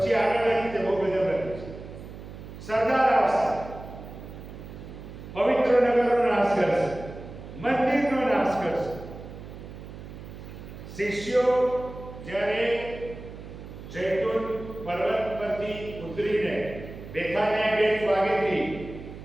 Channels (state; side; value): noise; right; hum, 13 dB below the sound